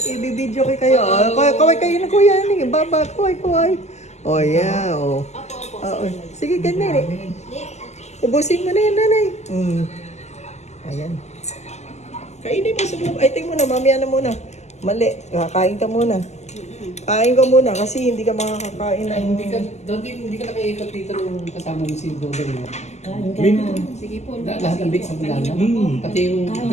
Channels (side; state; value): right; late; 0.33 ms